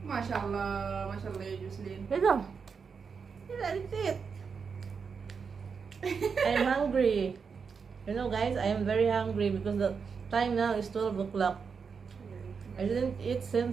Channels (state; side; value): quieter; left; 5.8 dB